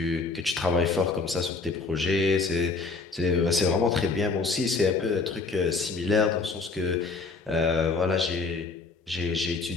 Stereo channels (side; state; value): right; quieter; 4.0 dB